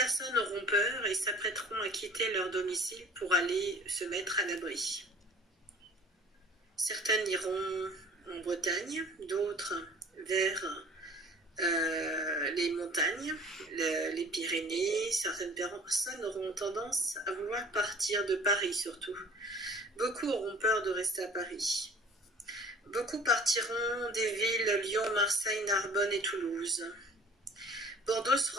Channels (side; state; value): both; normal; correlation 0.47